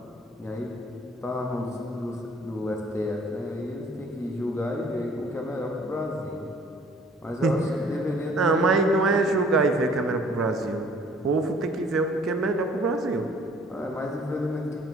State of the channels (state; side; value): normal; both; correlation 0.56